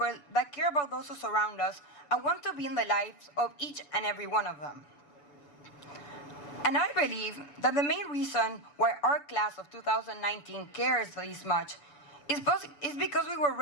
that care about those who surround us and want to be in the lives of each and every one of them. And I believe that the main reason why our class of 2019 cares this much is because we were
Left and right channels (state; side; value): late; right; 6.8 ms